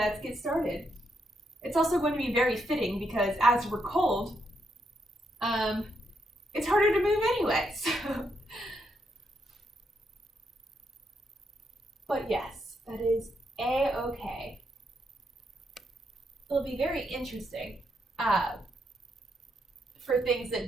get started. It's also going to be very fitting because as we're cold, it's harder to move anyway. So. But yes, that is a-okay. It'll be very interesting for things that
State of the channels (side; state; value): both; normal; correlation 0.79